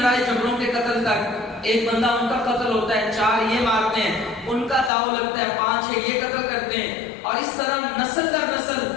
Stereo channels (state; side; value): drops out; right; at 4.9 s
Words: جھگڑوں کے قتل تک. ایک بندہ ان کا قتل ہوتا ہے، 4 یہ مارتے ہیں، ان کا داؤ لگتا ہے، 5-6 یہ قتل کرتے ہیں، اور اس طرح نسل در نسل